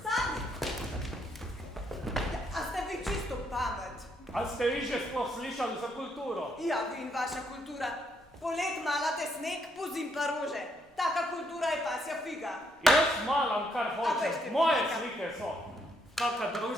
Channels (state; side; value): normal; both; correlation 0.74